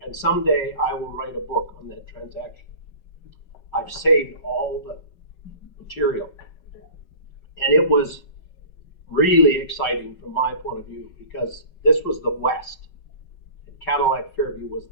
And someday I will write a book on that transaction. I've saved all the material. And it was really exciting from my point of view because this was the West. And Cadillac Fairview was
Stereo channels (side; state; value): right; late; 5.3 ms